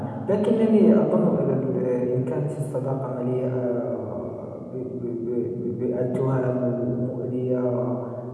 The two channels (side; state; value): both; identical; correlation 1.00